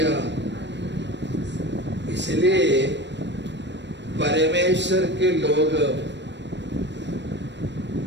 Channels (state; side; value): late; left; 0.52 ms